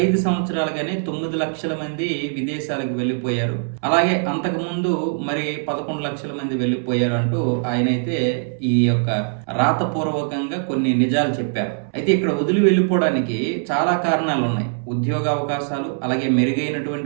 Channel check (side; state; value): left; silent; 63 dB below the other